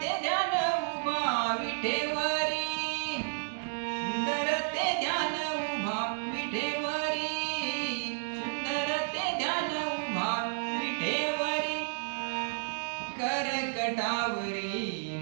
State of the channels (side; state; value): left; silent; digital silence